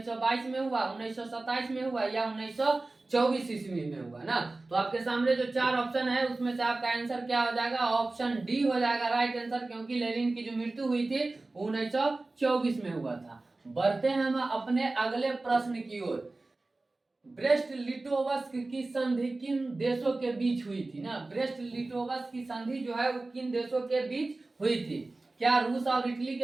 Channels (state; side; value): quieter; left; 3.2 dB